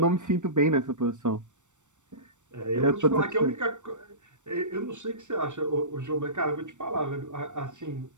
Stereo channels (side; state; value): left; late; 0.85 ms